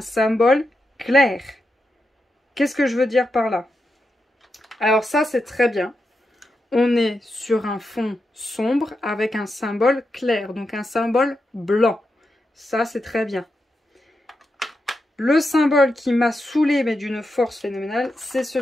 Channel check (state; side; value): normal; both; correlation 0.87